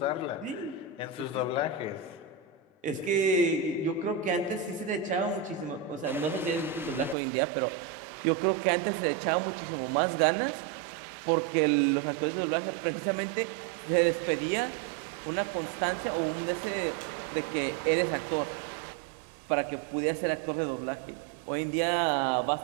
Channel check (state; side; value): drops out; left; at 7.2 s